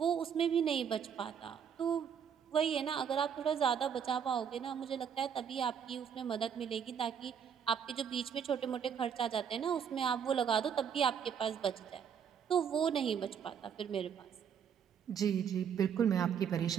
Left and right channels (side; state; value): left; quieter; 7.7 dB